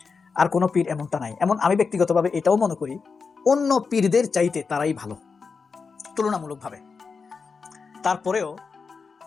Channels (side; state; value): right; quieter; 5.1 dB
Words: আর কোনো পীর এমনটা নাই। এমন আমি ব্যক্তিগতভাবে এটাও মনে করি অন্য পীরদের চাইতে তারাই ভালো তুলনামূলকভাবে। তারপরেও